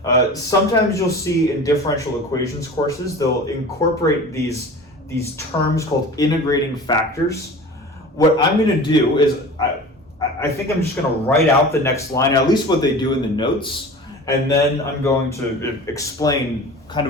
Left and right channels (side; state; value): both; normal; correlation 0.37